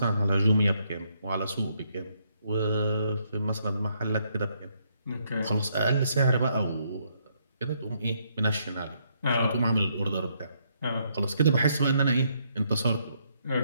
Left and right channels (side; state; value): both; inverted; correlation -0.73